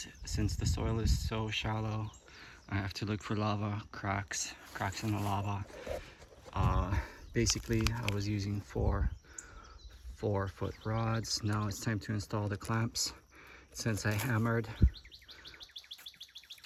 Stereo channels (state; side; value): identical; both; correlation 1.00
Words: since the soil is so shallow, I have to look for lava cracks in the lava. Basically, I was using 4-foot rods. Now it's time to install the clamps. Since I hammered